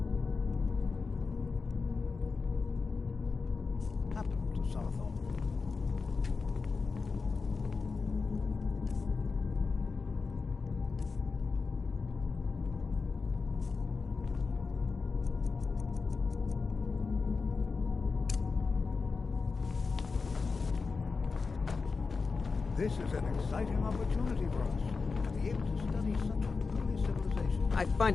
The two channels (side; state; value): right; quieter; 4.6 dB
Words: Happened to Southall. This is an exciting opportunity for us to be able to study such an early civilization. I